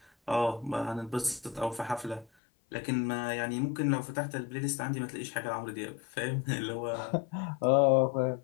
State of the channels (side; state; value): right; drops out; at 2.2 s